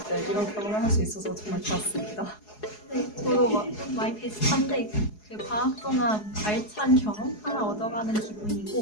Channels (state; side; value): late; right; 4.7 ms